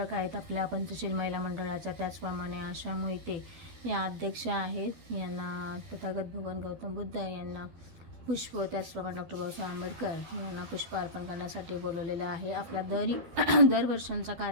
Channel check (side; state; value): left; late; 12 ms